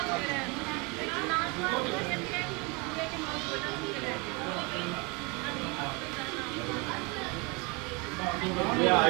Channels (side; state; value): left; quieter; 28.9 dB